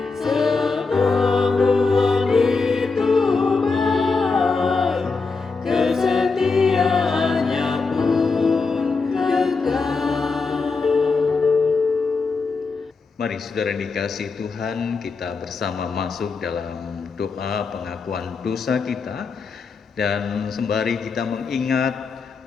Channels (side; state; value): right; quieter; 4.4 dB